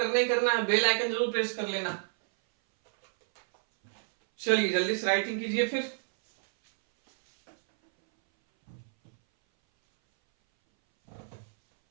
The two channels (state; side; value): silent; left; 59 dB below the other